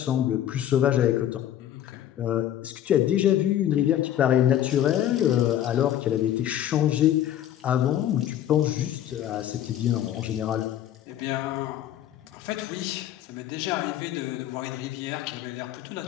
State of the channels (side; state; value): right; quieter; 11.5 dB